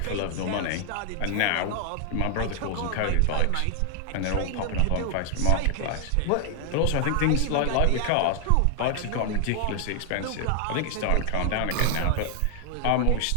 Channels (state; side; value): different; both; correlation 0.00